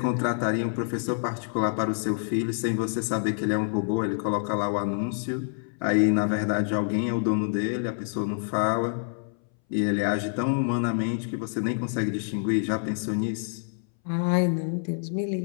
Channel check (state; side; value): silent; right; 60 dB below the other